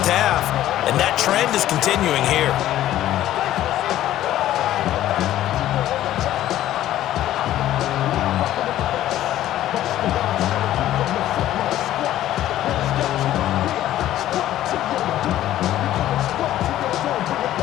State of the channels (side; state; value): right; quieter; 13.3 dB